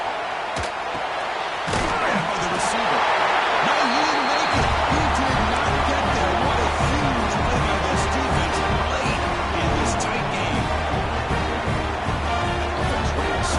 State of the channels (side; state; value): both; identical; correlation 1.00